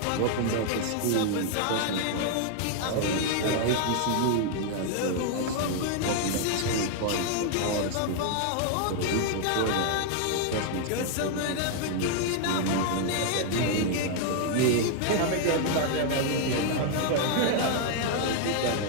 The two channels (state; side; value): different; both; correlation 0.00